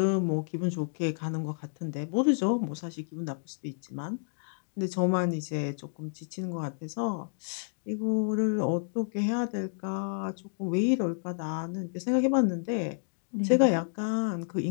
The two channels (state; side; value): silent; right; digital silence